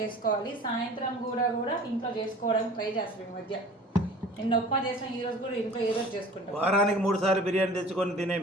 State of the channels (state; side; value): normal; both; correlation 0.44